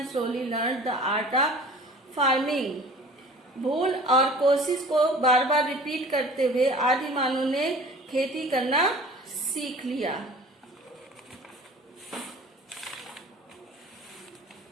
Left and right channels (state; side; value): normal; both; correlation 0.44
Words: slowly learned the art of farming. भूल और कोशिश को बार बार रिपीट करते हुए आदिमानव ने खेती करना सीख लिया.